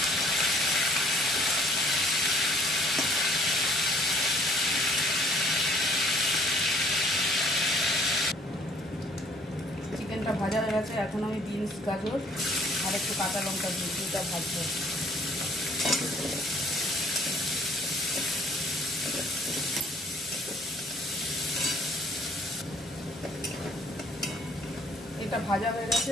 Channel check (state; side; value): normal; both; correlation 0.59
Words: চিকেনটা ভাজা হয়ে গেছে। এখন আমি বিনস, গাজর আর একটু কাঁচা লঙ্কা দিয়ে দুটা ভাজবো। এটা ভাজা হয়ে গেছে।